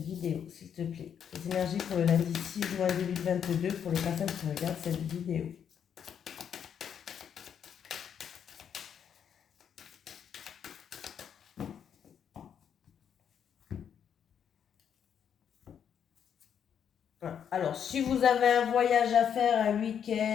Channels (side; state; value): right; quieter; 8.3 dB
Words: s'il te plaît. Les énergies pour le lundi 6 juin 2022 pour les personnes qui regardent cette vidéo. Alors, si vous avez un voyage à faire, un